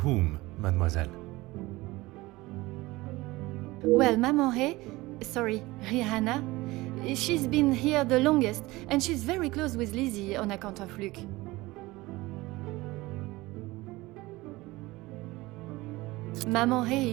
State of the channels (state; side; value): quieter; left; 20.3 dB